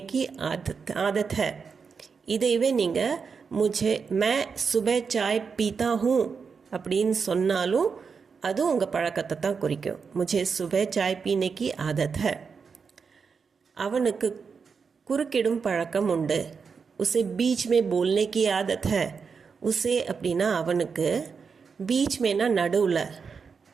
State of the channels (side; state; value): left; quieter; 5.6 dB